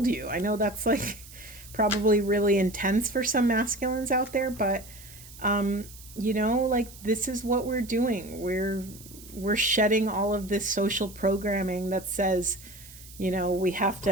you. I know that's probably really intense for some masculines out there, but this is what we're doing. we're shedding all of this social programming that says, we have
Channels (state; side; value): noise; right; hiss, 18 dB below the sound